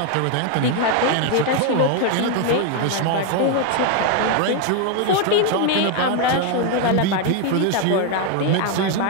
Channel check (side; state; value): both; different; correlation 0.01